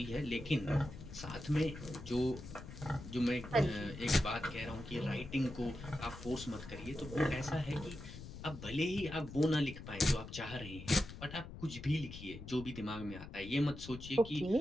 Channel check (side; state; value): left; noise; rumble, 12 dB below the sound